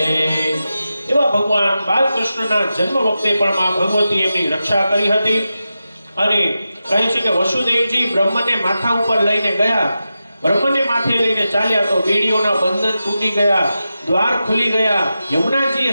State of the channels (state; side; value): inverted; both; correlation -0.91